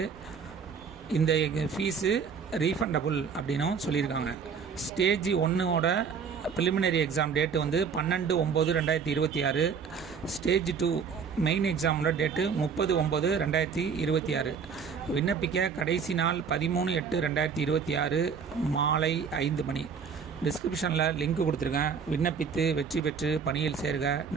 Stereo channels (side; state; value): left; quieter; 6.2 dB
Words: இந்த ஃபீஸு ரீஃபண்டபுள் அப்படின்னும் சொல்லியிருக்காங்க. ஸ்டேஜ் 1ஓட ப்ரிலிமினரி எக்ஸாம் டேட்டு வந்து 12/9/2026. ஸ்டேஜ் 2 மெயின் எக்ஸாமோட டேட்டு 30/9/2026. விண்ணப்பிக்க கடைசி நாள் 13/8/2026 மாலை 5 மணி. டிஸ்கிரிப்ஷனில் லிங்க் கொடுத்துருக்கேன். விண்ணப்பித்து வெற்றி பெற்று பணியில் சேர்க.